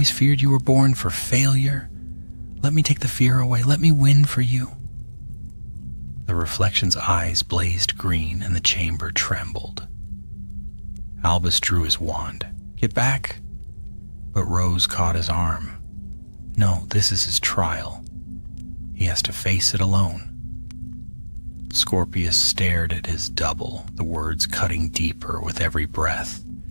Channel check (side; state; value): both; inverted; correlation -1.00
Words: feared you were born for failure. Let me take the fear away. Let me win for you." The reflection's eyes blazed green and the chamber trembled. Albus drew his wand. "Get back." But Rose caught his arm. "No, this is his trial. He has to face it alone." Scorpius stared at his double, the words cutting deeper with every breath.